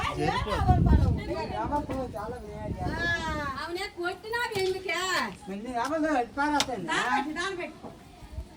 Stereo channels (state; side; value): identical; both; correlation 1.00